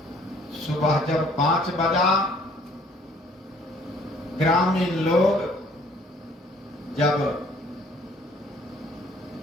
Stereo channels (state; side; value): normal; both; correlation 0.59